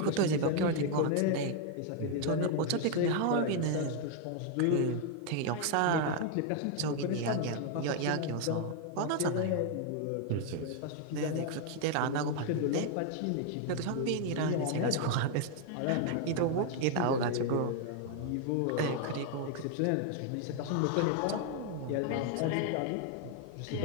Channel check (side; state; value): both; different; correlation 0.00